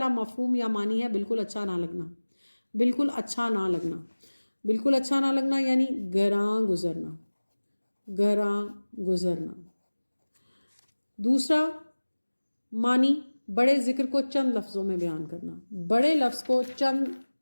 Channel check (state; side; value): inverted; both; correlation -1.00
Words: مفہوم یا معنی ہے بالکل اچھا نہ لگنا. بالکل اچھا نہ لگنا، بالکل اچھا نہ لگنا یعنی گراں گزرنا، گراں گزرنا. دوسرا معنی بڑے ذکر کو چند لفظوں میں بیان کرنا. بڑے لفظ کو